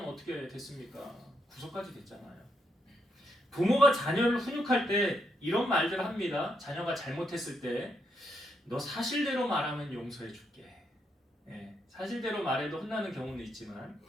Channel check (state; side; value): normal; both; correlation 0.78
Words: 어떻게 됐습니까? 구속까지 됐잖아요. 부모가 자녀를 훈육할 때 이런 말들을 합니다. 자녀가 잘못했을 때 너 사실대로 말하면 용서해 줄게. 사실대로 말해도 혼나는 경우는 있지만,